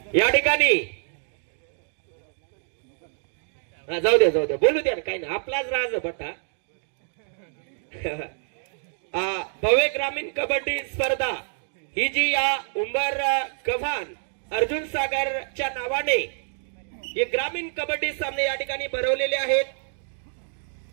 या ठिकाणी जाऊ द्या बोलू द्या काही नाही, आपलाच राज बटा. भव्य ग्रामीण कबड्डी स्पर्धा ही जी या उंबर गव्हाण अर्जुन सागरच्या नावाने हे ग्रामीण कबड्डी सामने या ठिकाणी भरवलेले आहेत.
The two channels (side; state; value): left; silent; digital silence